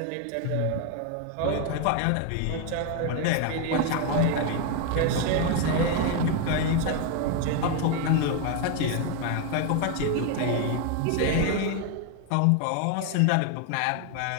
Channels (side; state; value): both; different; correlation 0.01